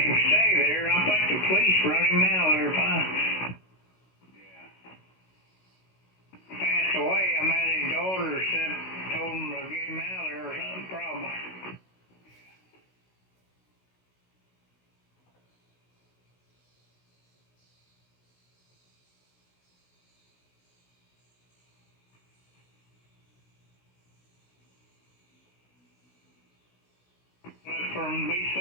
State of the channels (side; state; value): right; late; 16 ms